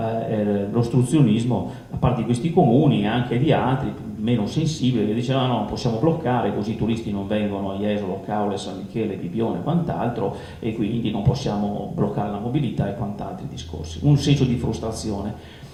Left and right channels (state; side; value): identical; both; correlation 1.00